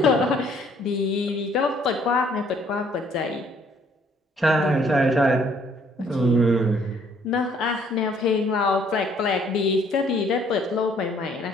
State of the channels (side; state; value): both; normal; correlation 0.63